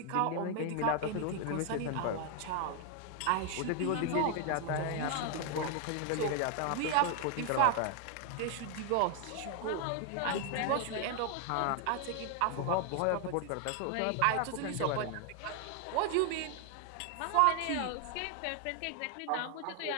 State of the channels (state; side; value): different; both; correlation 0.00